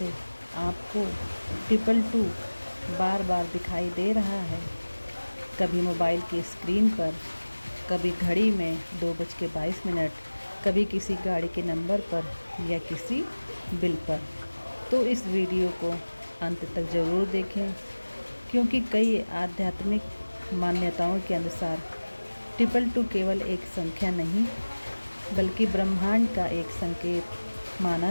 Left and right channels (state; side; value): inverted; both; correlation -1.00